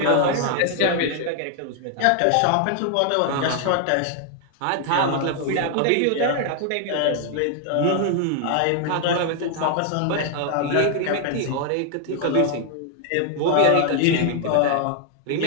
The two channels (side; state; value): both; different; correlation 0.00